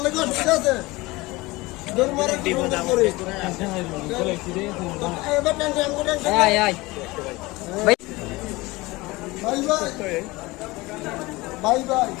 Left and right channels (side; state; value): right; quieter; 21.8 dB